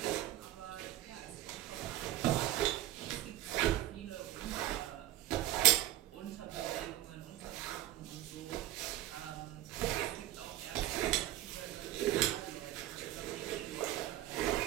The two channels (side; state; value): left; quieter; 14.5 dB